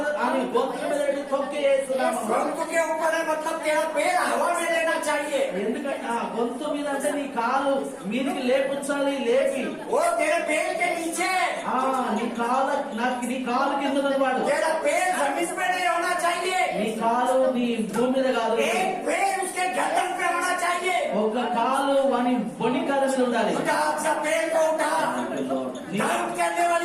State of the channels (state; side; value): identical; both; correlation 1.00